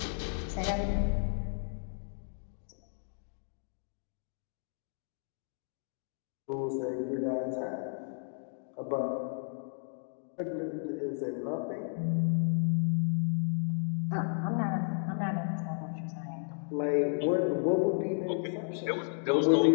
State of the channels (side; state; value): right; silent; digital silence